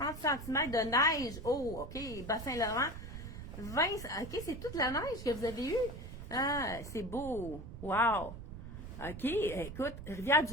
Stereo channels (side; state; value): right; noise; rumble, 10 dB below the sound